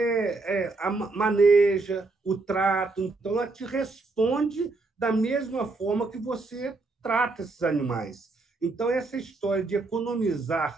maneja, o trato. Então, ela te responde da mesma forma que você trata esses animais. Então, essa história de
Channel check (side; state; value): left; quieter; 3.5 dB